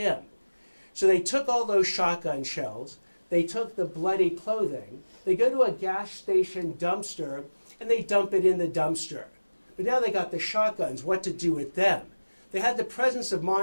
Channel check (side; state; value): both; inverted; correlation -1.00